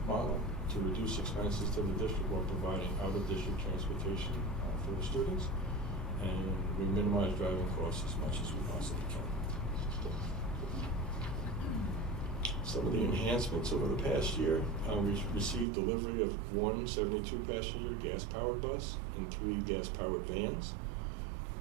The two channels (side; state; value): left; drops out; at 15.7 s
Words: model to reduce expenses to the district while providing out-of-district transportation for the students. And we minimize driving costs as much as we possibly can. Some of the enhancements over the past year, we've received delivery of one 72-passenger gas-powered bus and 3 gas-powered vans.